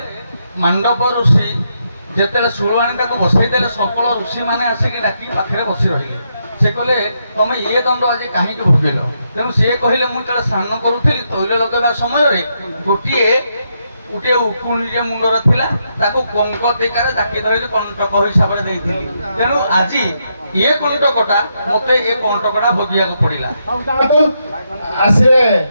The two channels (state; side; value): inverted; both; correlation -0.80